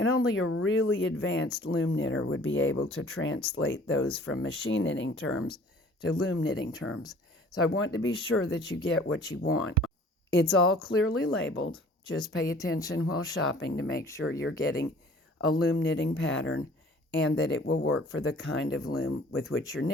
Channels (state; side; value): normal; both; correlation 0.51